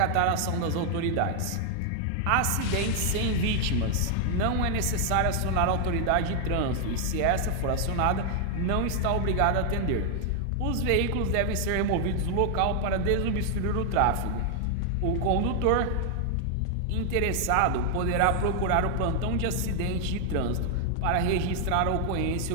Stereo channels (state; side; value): different; both; correlation 0.00